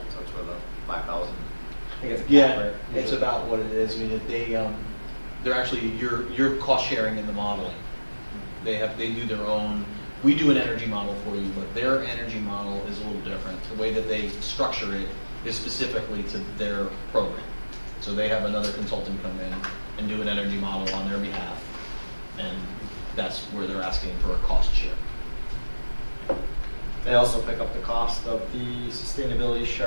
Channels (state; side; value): inverted; both; correlation -1.00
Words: it's for the 5,000. I think it's a cap, Yeah, right? it's about what it is. I mean, they're actually you're cost sharing in the modeling. They do their own. We do an energy model for you, but their energy model is a little different. The way that they structure it is specifically to their program. So they have another consultant come in and do an energy model on their behalf, and that's where they're asking for a cost share. They also pick up the cost of the sustainability